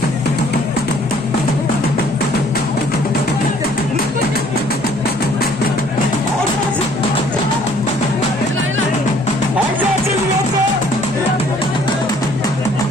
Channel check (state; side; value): normal; both; correlation 0.59